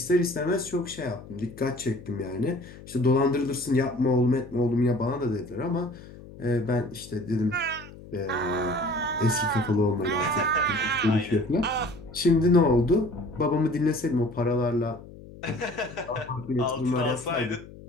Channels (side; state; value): left; noise; hum, 17 dB below the sound